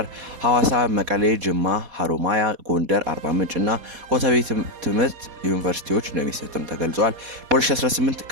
ሐዋሳ፣ መቀሌ፣ ጅማ፣ ሀሮማያ፣ ጎንደር፣ አርባ ምንጭ እና ኮተቤ ትምህርት ዩኒቨርሲቲዎች እንደሚሰጥም ተገልጿል። በ2018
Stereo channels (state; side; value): late; left; 4.2 ms